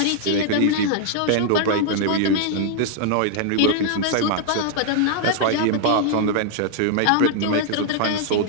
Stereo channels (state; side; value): different; both; correlation 0.00